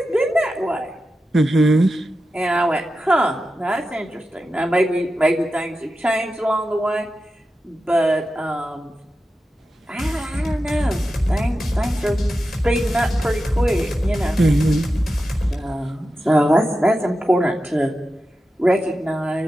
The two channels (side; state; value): both; normal; correlation 0.91